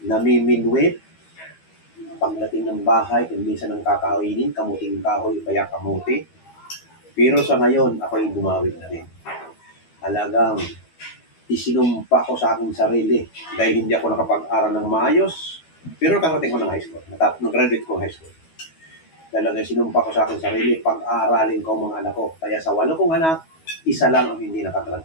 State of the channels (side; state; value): right; late; 12 ms